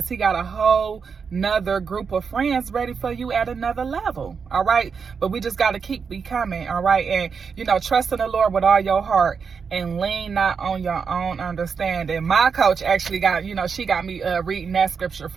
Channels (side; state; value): left; quieter; 5.9 dB